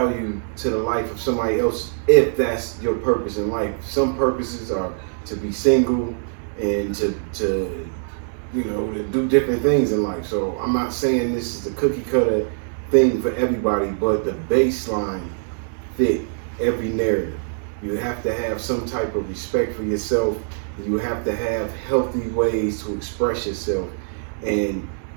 to the life of somebody else, if that's your purpose in life. Some purposes are to be single and to you know, to do different things in life. So I'm not saying this is the cookie cutter thing for everybody, but the baseline fit every narrative. You have to have some type of respect for yourself. You have to have healthy ways to express yourself. And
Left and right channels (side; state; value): left; silent; 64 dB below the other